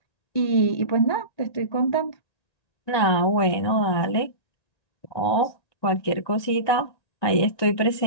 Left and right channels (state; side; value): late; right; 1.9 ms